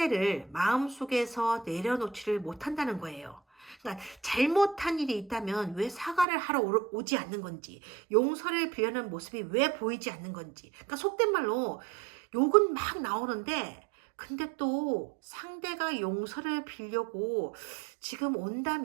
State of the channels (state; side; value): drops out; left; at 6.2 s